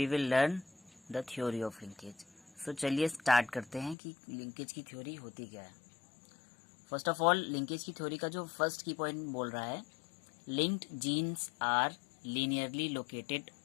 will learn the theory of linkage. So चलिए start करते हैं कि linkage की theory होती क्या है. First of all linkage की theory का जो first key point बोल रहा है, linked genes are linearly located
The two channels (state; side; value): drops out; right; at 4.0 s